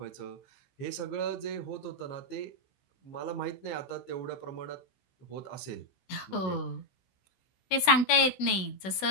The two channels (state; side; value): late; right; 16 ms